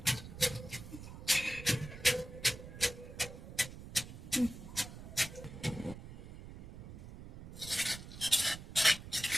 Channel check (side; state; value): right; noise; rumble, 12 dB below the sound